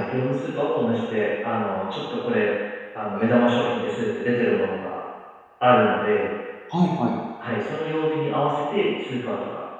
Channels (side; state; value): both; identical; correlation 1.00